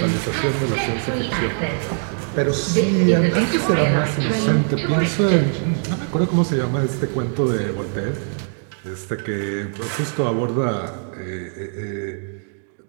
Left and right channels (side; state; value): left; silent; 65 dB below the other